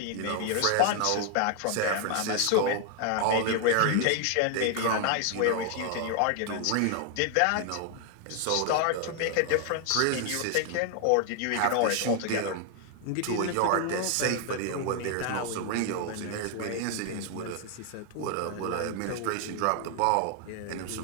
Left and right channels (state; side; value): different; both; correlation 0.00